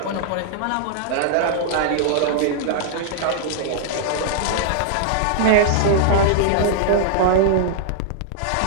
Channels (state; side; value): different; both; correlation -0.01